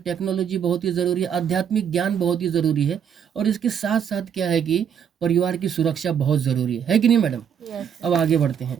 बहुत ही ज़रूरी है, आध्यात्मिक ज्ञान बहुत ही ज़रूरी है और इसके साथ-साथ क्या है कि परिवार की सुरक्षा बहुत ज़रूरी है कि नहीं मैडम? अब आगे बढ़ते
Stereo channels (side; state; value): left; quieter; 8.2 dB